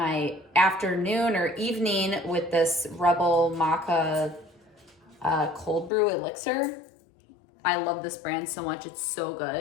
afternoon or evening with this Rebel Maca cold brew elixir. I love this brand so much, it's so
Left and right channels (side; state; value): right; drops out; at 5.9 s